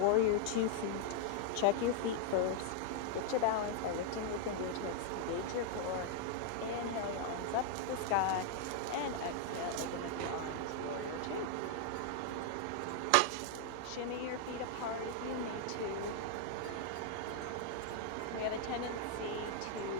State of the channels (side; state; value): both; different; correlation 0.00